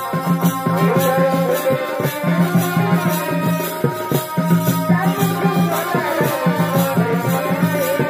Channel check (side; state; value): both; identical; correlation 1.00